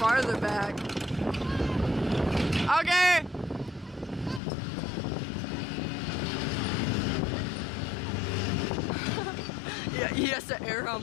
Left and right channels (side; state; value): right; drops out; at 4.4 s